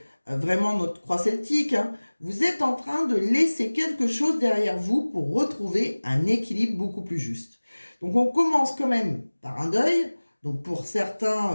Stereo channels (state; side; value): inverted; both; correlation -1.00